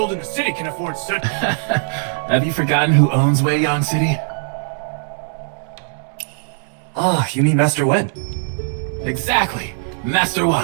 in the city can afford such... Have you forgotten who owns Weiyang City? Ah, you mean Master Wen? Exactly. Master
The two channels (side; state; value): left; silent; 66 dB below the other